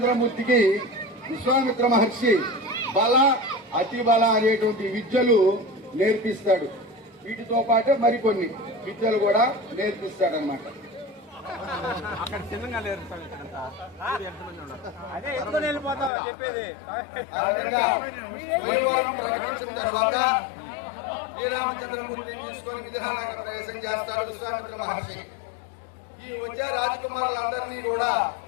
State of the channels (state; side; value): drops out; right; at 16.1 s